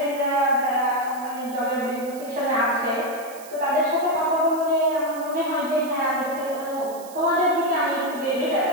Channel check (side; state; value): right; noise; hiss, 19 dB below the sound